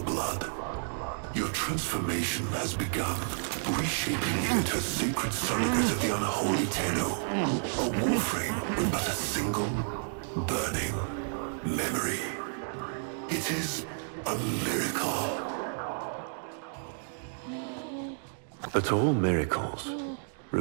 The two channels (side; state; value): left; silent; digital silence